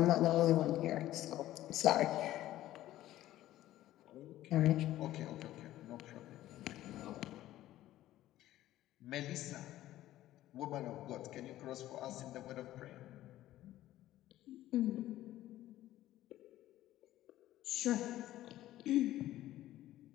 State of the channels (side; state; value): right; quieter; 14.4 dB